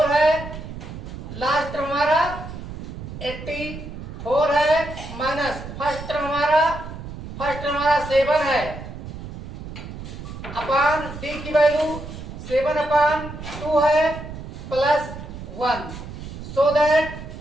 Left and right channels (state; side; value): noise; right; rumble, 10 dB below the sound